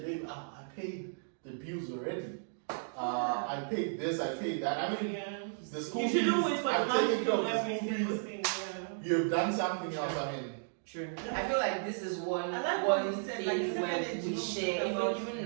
babe, I paid the bills already. I paid this, I paid that. I mean, the school fees, I've taken care of the school fees. You've done something else, I mean. True. I feel like this is one said, thing like, where we share, even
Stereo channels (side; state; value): left; silent; digital silence